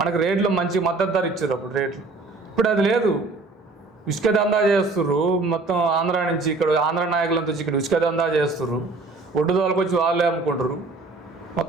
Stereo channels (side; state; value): left; quieter; 3.5 dB